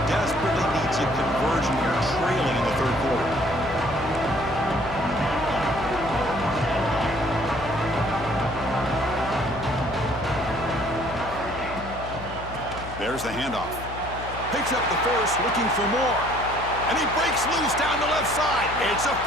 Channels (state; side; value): noise; left; hum, 12 dB below the sound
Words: desperately needs a conversion here, trailing in the third quarter. There's the handoff. Picks up the first, looking for more. And he breaks loose down the left side. It's a